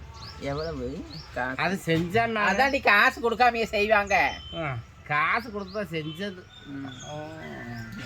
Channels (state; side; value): identical; both; correlation 1.00